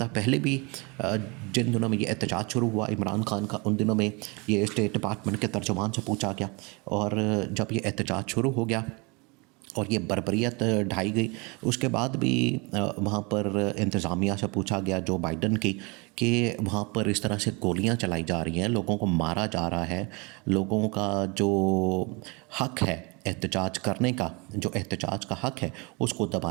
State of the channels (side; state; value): left; quieter; 28.9 dB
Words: पहले भी जिन दिनों में ये एहतजाज शुरू हुआ इमरान खान का, उन दिनों में ये स्टेट डिपार्टमेंट के तर्जुमान से पूछा गया, और जब ये एहतजाज शुरू हो गया और ये बर्बरियत ढाई गई, उसके बाद भी वहाँ पर इंतज़ामिया से पूछा गया जो बाइडन की कि वहाँ पर इस तरह से गोलियाँ चलाई जा रही हैं, लोगों को मारा जा रहा है, लोगों का जो हक है एहतजाज करने का, जो एहतजाज का हक है उसको